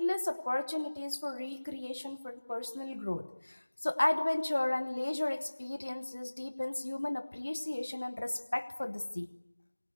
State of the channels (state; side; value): inverted; both; correlation -1.00